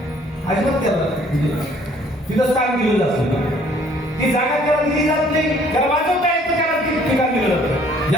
अजिबात त्याला म्हणजे तिथं स्थान दिलं जातं ती जागा त्याला दिली जात नाही त्याला वाजवता येतं त्याला ठिकाण दिलं जातं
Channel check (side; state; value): both; normal; correlation 0.59